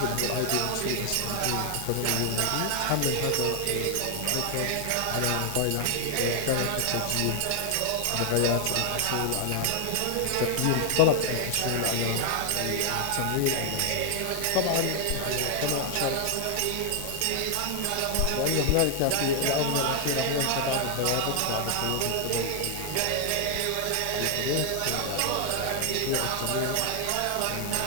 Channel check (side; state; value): both; different; correlation 0.00